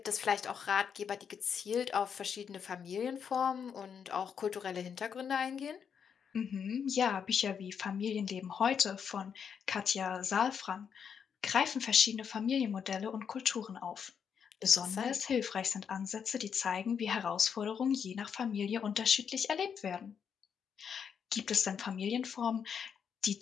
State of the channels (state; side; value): quieter; right; 7.2 dB